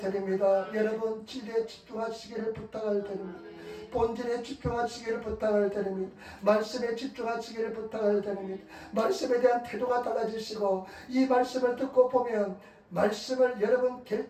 여러분 진리에 집중하시기를 부탁을 드립니다. 본질에 집중하시기를 부탁을 드립니다. 말씀에 집중하시기를 부탁을 드립니다. 말씀에 대한 태도가 달라지시고 이 말씀을 듣고 보면 말씀을 여러분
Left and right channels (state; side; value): identical; both; correlation 1.00